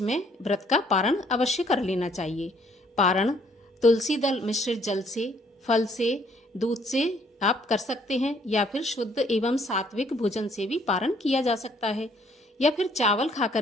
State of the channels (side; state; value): both; normal; correlation 0.64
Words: में व्रत का पारण अवश्य कर लेना चाहिए। पारण तुलसी दल मिश्रित जल से, फल से, दूध से आप कर सकते हैं या फिर शुद्ध एवं सात्विक भोजन से भी पारण किया जा सकता है या फिर चावल